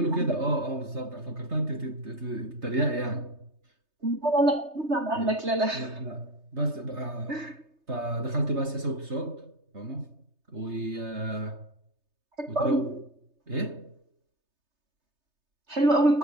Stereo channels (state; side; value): late; left; 3.3 ms